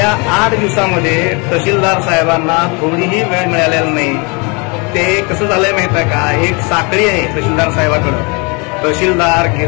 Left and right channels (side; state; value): right; quieter; 30.9 dB